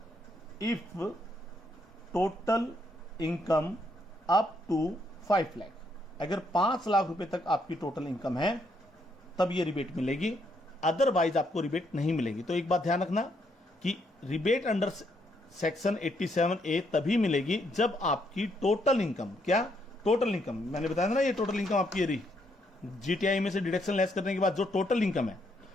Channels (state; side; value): normal; both; correlation 0.74